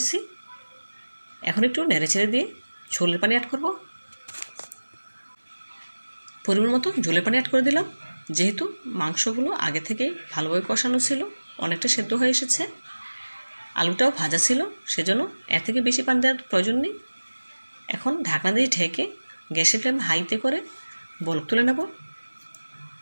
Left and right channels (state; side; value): inverted; both; correlation -1.00